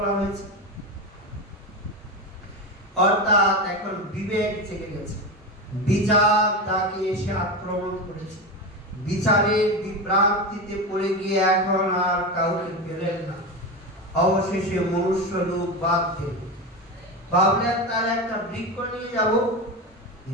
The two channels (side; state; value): both; normal; correlation 0.19